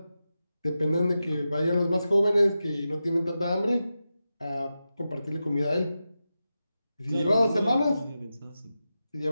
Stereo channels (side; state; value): both; inverted; correlation -0.91